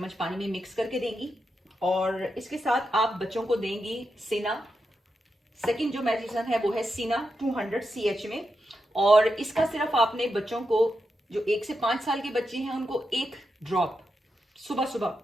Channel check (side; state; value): both; normal; correlation 0.86